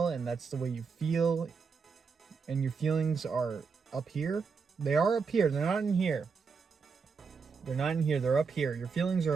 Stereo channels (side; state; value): left; quieter; 5.4 dB